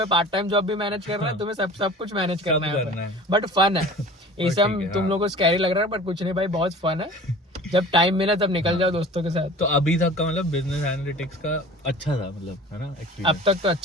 पार्ट टाइम जॉब भी मैनेज करना है, तुम्हें सब कुछ मैनेज करना है, बट फन है। ये सब तुम लोगों को स्कैरी लग रहा है, बट कुछ नहीं भाई, बहुत फन है। जब टाइम मिला तब निकल जाओ दोस्तों के साथ। तो अभी तक का मतलब बिजनेस एनालिटिक्स का अच्छा था, मतलब है ना अब तक तो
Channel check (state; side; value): normal; both; correlation 0.42